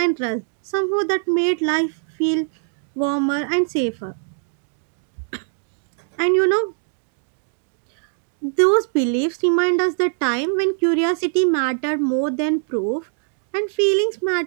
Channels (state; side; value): silent; left; 63 dB below the other